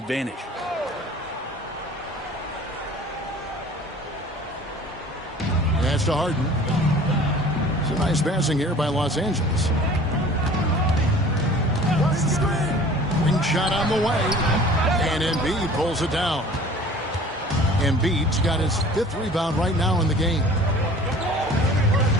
Pass to Harden. Some nice passing here by Los Angeles. Ring shot on the way. And Embiid pulls it down. Embiid's got his 5th rebound right now in the game.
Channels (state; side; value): normal; both; correlation 0.46